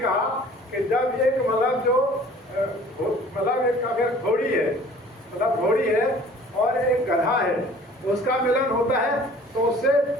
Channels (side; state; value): both; normal; correlation 0.50